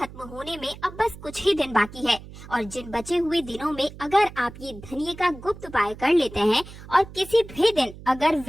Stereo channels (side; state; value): right; noise; hum, 16 dB below the sound